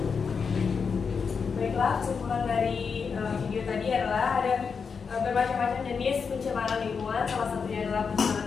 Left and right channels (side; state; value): right; quieter; 5.7 dB